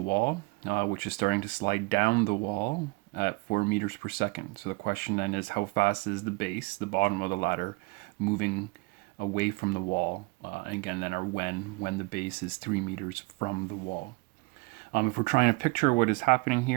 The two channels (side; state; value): left; quieter; 26.3 dB